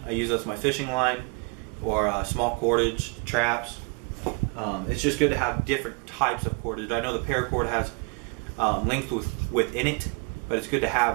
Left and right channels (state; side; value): quieter; left; 35.2 dB